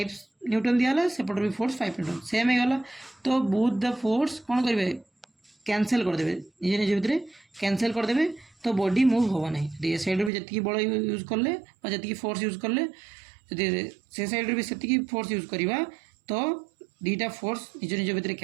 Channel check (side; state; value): left; drops out; at 10.3 s